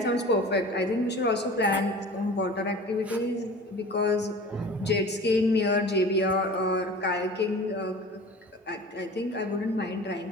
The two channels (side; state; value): both; normal; correlation 0.40